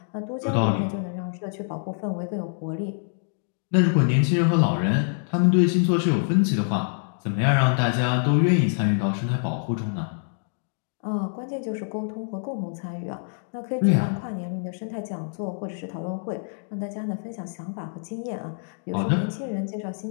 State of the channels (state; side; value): silent; right; digital silence